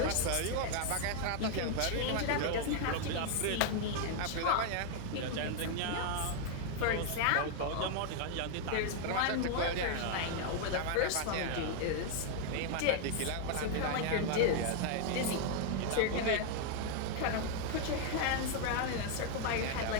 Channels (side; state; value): both; different; correlation 0.00